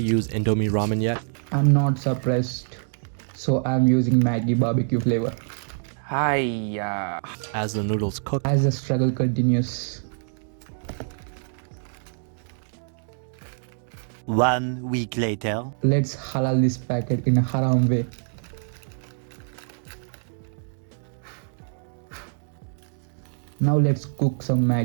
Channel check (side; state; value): left; silent; digital silence